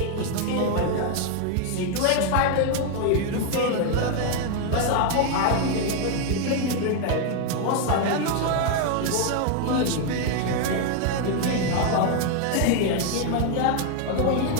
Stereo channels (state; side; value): different; both; correlation 0.00